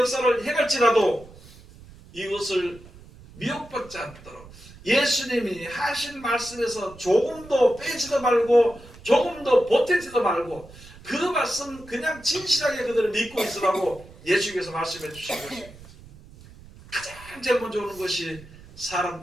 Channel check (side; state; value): right; noise; rumble, 20 dB below the sound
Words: 해갈지라도 이것을 미혹받지 않도록 예수님이 하신 말씀에서 조금도 빼지도 말고 조금도 보태지도 말고 그 말씀 그냥 진실하게 그들을 믿고 있으라고 예수께서 말씀해 주신 것입니다. 가장 제일 먼저 오는 것이